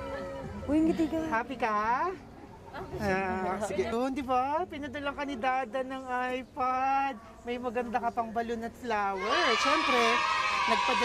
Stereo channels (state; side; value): identical; both; correlation 1.00